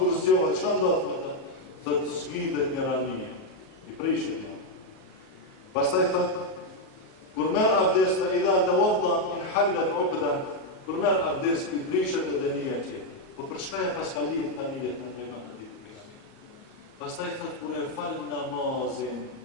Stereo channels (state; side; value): late; right; 38 ms